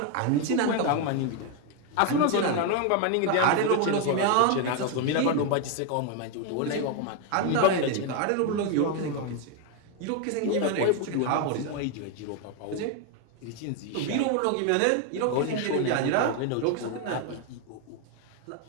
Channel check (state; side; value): different; both; correlation 0.01